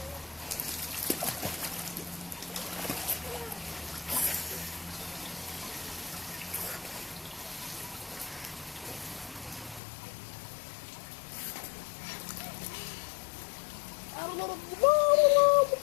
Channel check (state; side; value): drops out; right; at 9.8 s